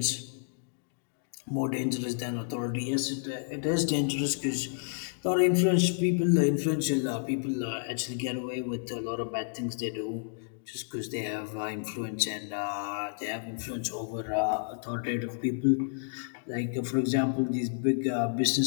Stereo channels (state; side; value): silent; right; digital silence